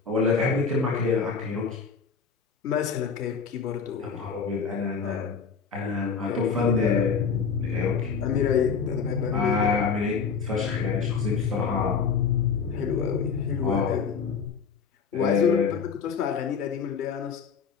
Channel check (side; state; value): right; quieter; 5.8 dB